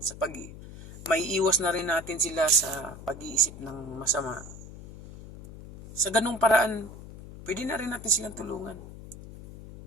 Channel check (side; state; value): left; noise; hum, 14 dB below the sound